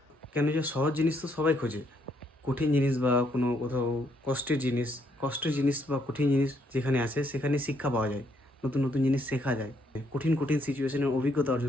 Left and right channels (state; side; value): normal; both; correlation 0.72